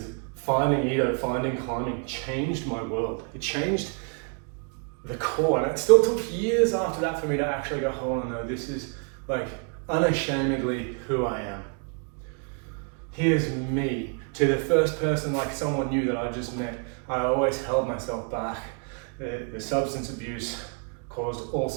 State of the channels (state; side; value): quieter; left; 40.0 dB